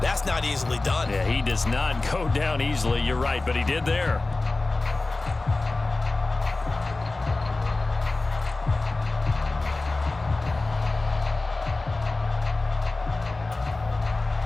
that's not easily done. Yeah, he does not go down easily. You're right, but he did there.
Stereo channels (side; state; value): right; quieter; 3.3 dB